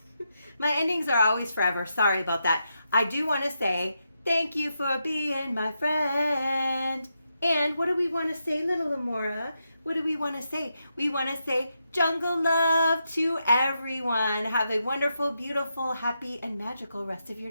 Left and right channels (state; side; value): inverted; both; correlation -0.84